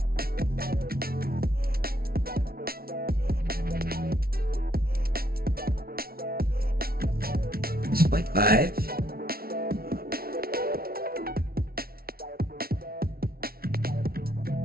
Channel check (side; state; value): left; late; 0.44 ms